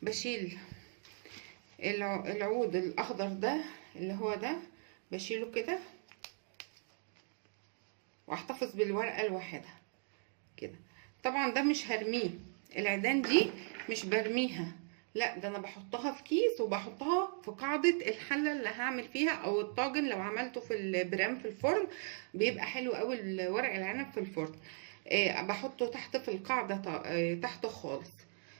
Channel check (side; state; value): left; silent; 52 dB below the other